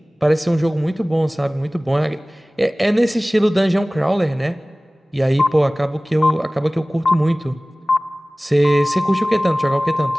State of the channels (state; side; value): normal; both; correlation 0.98